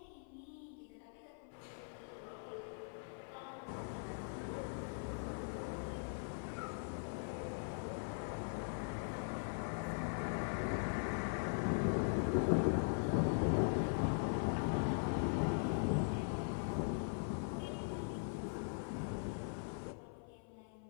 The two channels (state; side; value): silent; right; 50 dB below the other